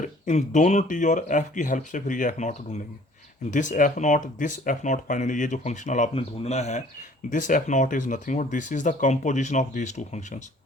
इन दोनों टी और एफ की हेल्प से फिर ये एफ नॉट ढूंढेंगे। दिस एफ नॉट फाइनली, ये जो फंक्शनल आपने ढूंढना है, this F not is nothing but this is the composition of these two functions.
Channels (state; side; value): normal; both; correlation 0.54